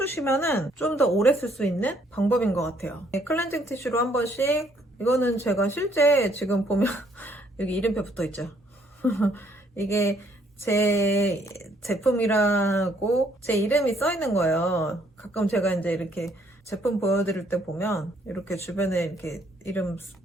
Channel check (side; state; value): both; normal; correlation 0.67